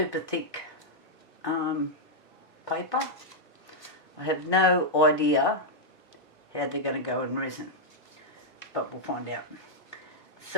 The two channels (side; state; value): right; late; 1.1 ms